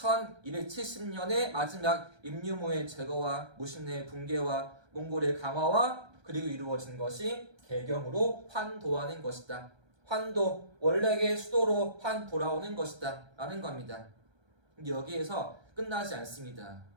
마지막 임유무의 제거와 무신의 붕괴와 몽골의 강화와 그리고 이루어진 것이 개경으로 환도하는 것이다. 환도, 원래의 수도로 환 돌아오는 것이다 라는 겁니다. 여기에서 끝나지 않습니다.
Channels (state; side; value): late; left; 1.3 ms